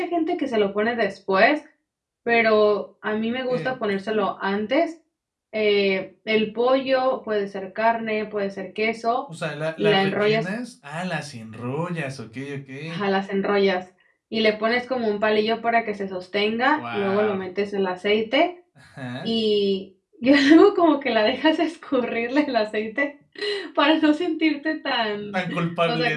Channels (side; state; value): both; identical; correlation 1.00